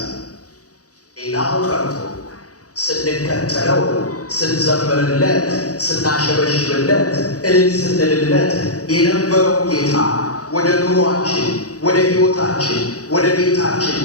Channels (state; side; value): late; right; 0.67 ms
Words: ሌላው ቀርቶ ስንከተለው፣ ስንዘምርለት፣ ስናሸበሽብለት፣ እልል ስንልለት የነበረው ጌታ ወደ ኑሯችን፣ ወደ ሕይወታችን፣ ወደ ቤታችን